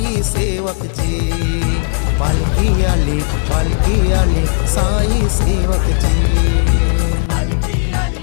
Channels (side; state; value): right; silent; digital silence